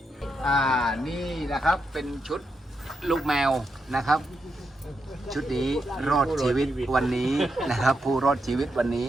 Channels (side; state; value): both; normal; correlation 0.84